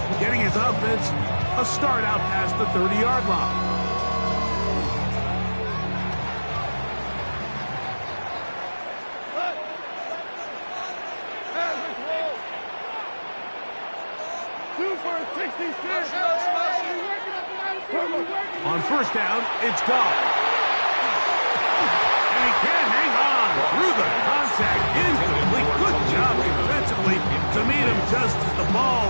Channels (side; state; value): both; inverted; correlation -1.00